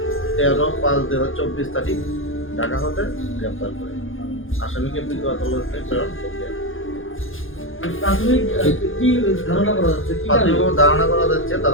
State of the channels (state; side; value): late; right; 0.58 ms